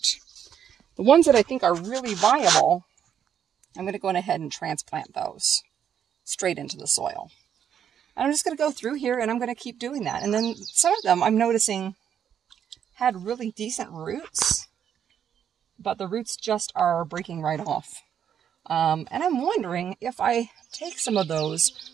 The ones that I think are really viable, I'm going to go ahead and transplant those straight into the soil. And I'm just going to go through here and I'm going to keep doing that. And then some of them I'm noticing had really decent roots, but the roots just are breaking right off. And I'm wondering if I take some of those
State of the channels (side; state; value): left; quieter; 8.8 dB